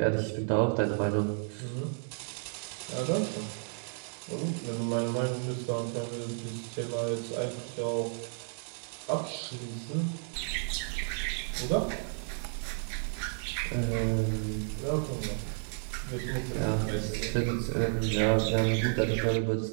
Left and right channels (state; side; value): silent; left; 56 dB below the other